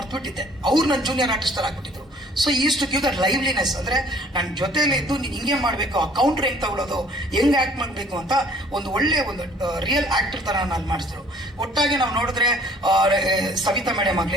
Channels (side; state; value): both; normal; correlation 0.56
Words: ಅವ್ರು ನನ್ನ ಜೂನಿಯರ್ ಆರ್ಟಿಸ್ಟರ್ ಆಗಿಬಿಟ್ಟಿದ್ರು. So is to give that liveliness. ಅಂದರೆ ನನ್ನ ಜೊತೆಯಲ್ಲಿ ಇದ್ದು ನೀನು ಹಿಂಗೆ ಮಾಡಬೇಕು, ಆ ಕೌಂಟ್ರ್ ಹೆಂಗೆ ತಗೊಳ್ಳೋದು, ಹೆಂಗೆ ಆ್ಯಕ್ಟ್ ಮಾಡಬೇಕು ಅಂತ ಒಂದು ಒಳ್ಳೆ ಒಂದು ರಿಯಲ್ ಆ್ಯಕ್ಟರ್ ಥರ ನಾನು ಮಾಡಿಸಿದ್ರು. ಒಟ್ಟಾಗಿ ನಾವು ನೋಡಿದ್ರೆ ಸವಿತಾ ಮೇಡಮ್